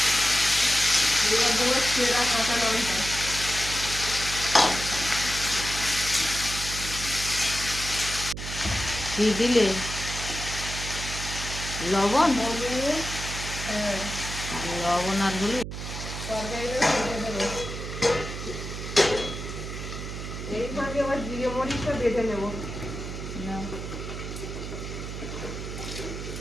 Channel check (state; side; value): noise; right; hum, 7 dB below the sound